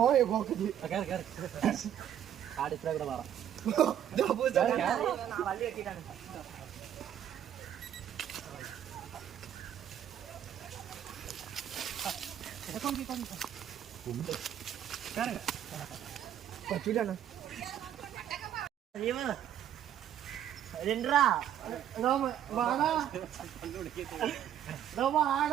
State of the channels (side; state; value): left; quieter; 10.3 dB